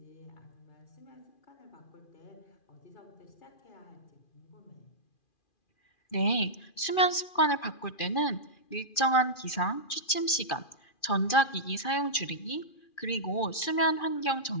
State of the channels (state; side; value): late; right; 2.4 ms